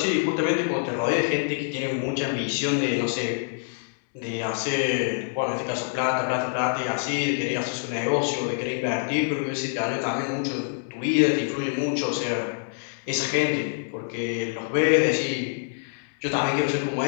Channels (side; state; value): right; silent; digital silence